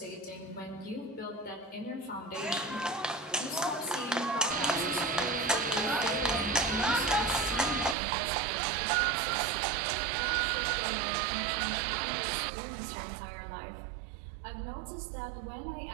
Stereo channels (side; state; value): left; drops out; at 8.0 s